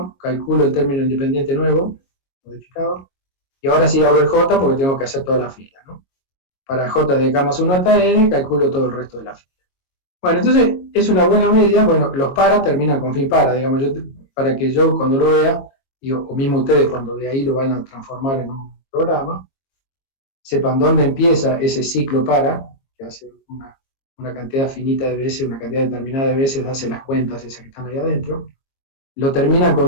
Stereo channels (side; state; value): right; late; 22 ms